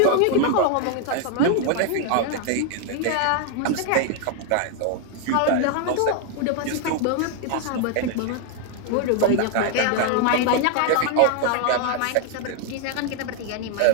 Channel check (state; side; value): different; both; correlation 0.00